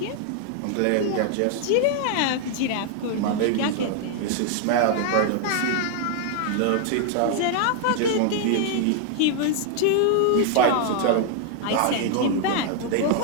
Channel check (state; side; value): different; both; correlation 0.00